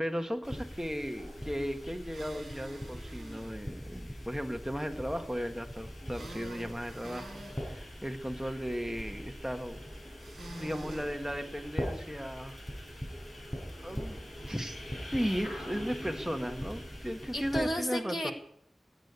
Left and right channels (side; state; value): both; normal; correlation 0.97